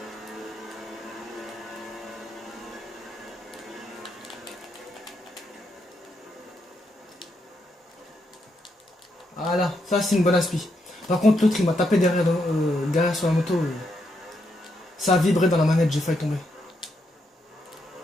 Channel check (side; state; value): both; normal; correlation 0.80